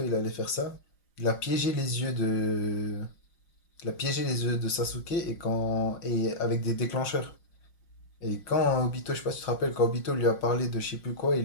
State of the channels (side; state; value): right; late; 5.6 ms